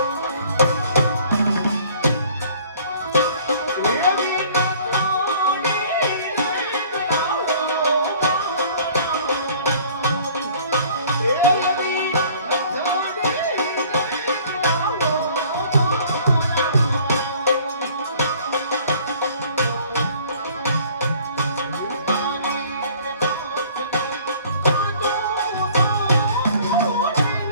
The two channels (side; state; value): both; inverted; correlation -0.53